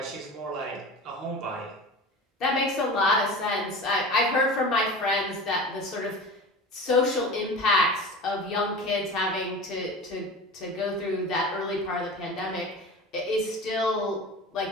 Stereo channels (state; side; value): normal; both; correlation 0.33